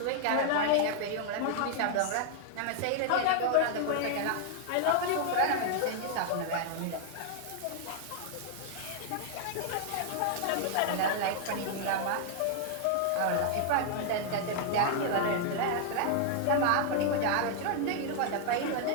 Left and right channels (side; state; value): both; different; correlation 0.00